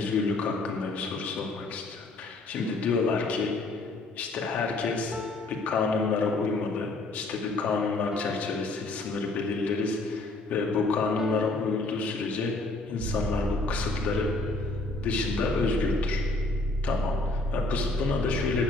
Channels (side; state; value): right; quieter; 3.0 dB